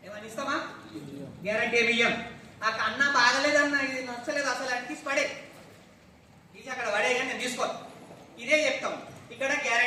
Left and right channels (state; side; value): identical; both; correlation 1.00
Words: ఏమన్నా ఇస్తామా? గ్యారంటీ ఏమి ఇయ్యం. నాకు అన్న బాగలేదన్న, ఇది నచ్చలేదు అసలు అని తీసి పడే, తీసి అక్కడ పడే, కానీ నేను తీసుకో. ఇదే చెప్తాం. ఇక్కడ